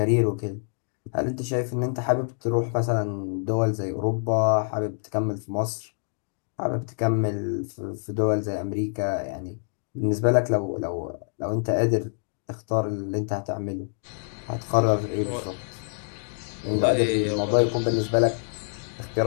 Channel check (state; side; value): silent; right; 59 dB below the other